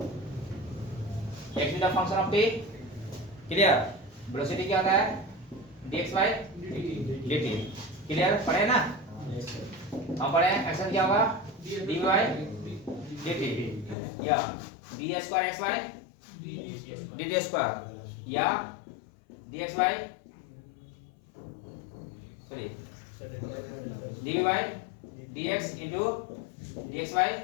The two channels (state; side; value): drops out; right; at 14.0 s